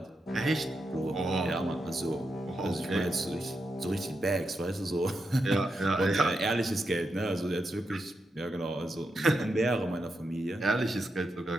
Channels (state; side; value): normal; both; correlation 0.85